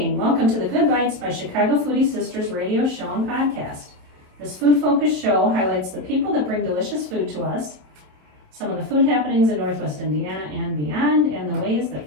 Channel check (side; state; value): left; late; 27 ms